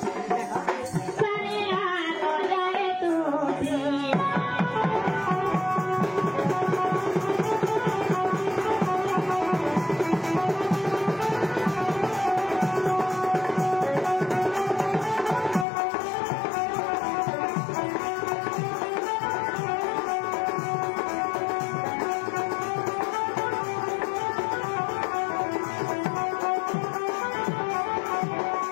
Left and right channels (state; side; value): drops out; right; at 15.7 s